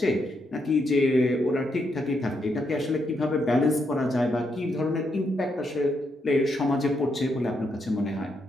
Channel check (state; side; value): normal; both; correlation 0.79